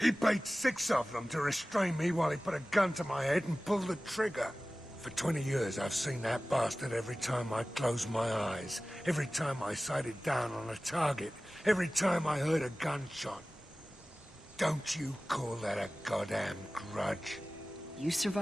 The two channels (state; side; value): normal; both; correlation 0.97